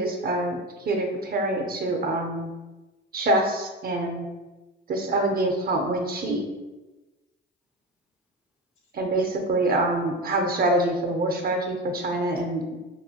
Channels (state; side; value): normal; both; correlation 0.22